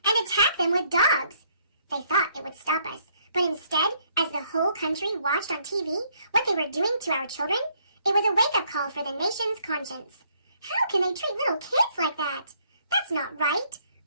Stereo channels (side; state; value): both; inverted; correlation -0.67